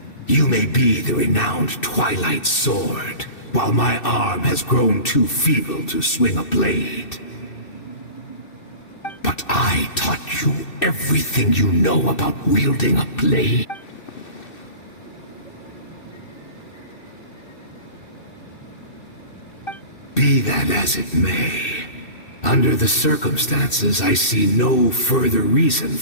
You may be the renowned Twilight Sword, while my arm has grown too feeble to swing a blade. But I taught you everything you know about wielding a blade. Be that as it may, under the circumstances, I see no further reason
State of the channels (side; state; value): right; late; 2.6 ms